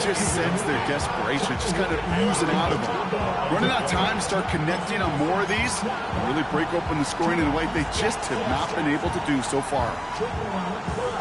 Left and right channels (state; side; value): identical; both; correlation 1.00